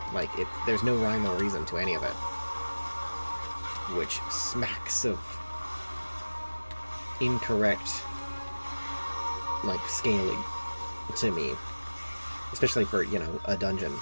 like, there's no rhyme or reason to any of it. Which smacks of incorrect, like, scaling to me. Especially for, you know, a dungeon.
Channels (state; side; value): inverted; both; correlation -1.00